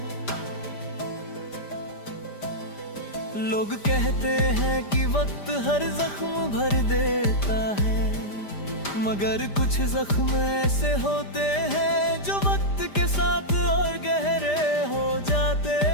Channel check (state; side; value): late; right; 5.0 ms